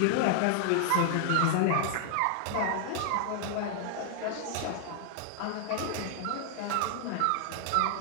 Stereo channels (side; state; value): both; different; correlation 0.00